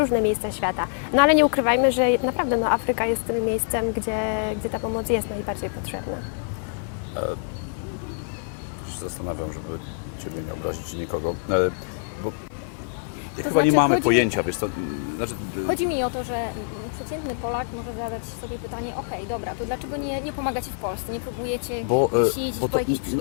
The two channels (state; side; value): quieter; right; 39.3 dB